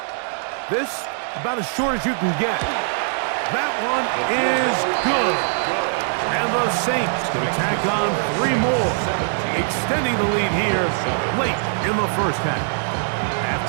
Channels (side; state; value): left; silent; digital silence